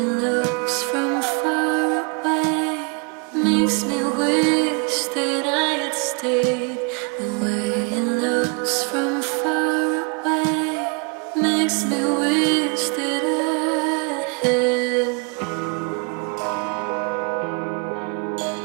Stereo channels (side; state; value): left; quieter; 34.3 dB